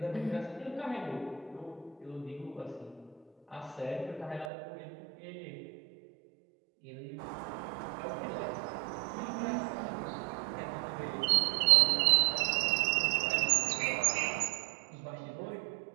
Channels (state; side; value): drops out; left; at 4.5 s